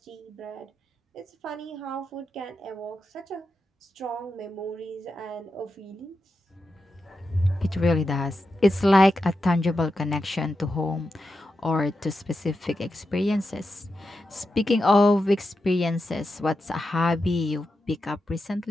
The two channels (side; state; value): both; normal; correlation 0.88